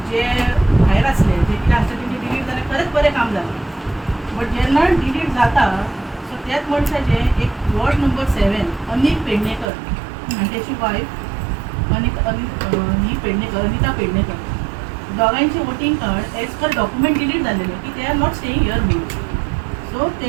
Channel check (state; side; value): drops out; left; at 9.7 s